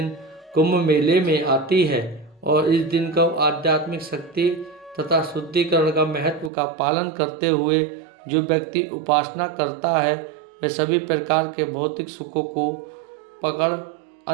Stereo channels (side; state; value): left; drops out; at 6.5 s